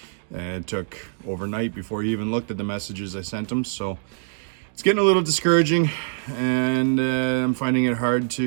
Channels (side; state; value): left; silent; digital silence